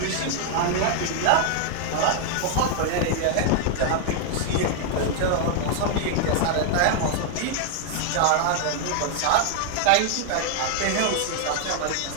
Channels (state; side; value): different; both; correlation 0.00